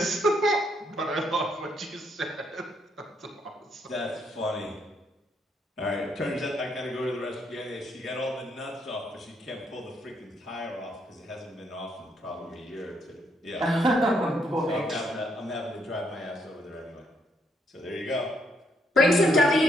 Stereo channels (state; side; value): normal; both; correlation 0.74